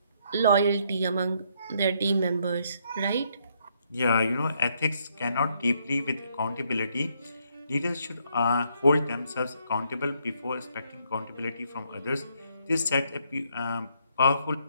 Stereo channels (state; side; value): inverted; both; correlation -0.72